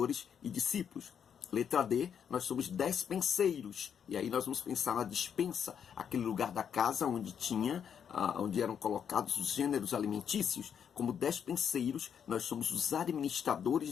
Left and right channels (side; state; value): right; quieter; 8.0 dB